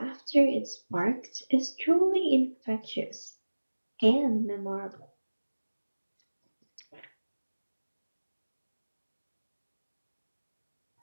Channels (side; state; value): both; inverted; correlation -1.00